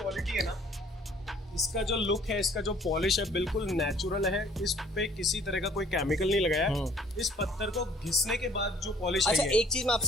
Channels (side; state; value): both; normal; correlation 0.57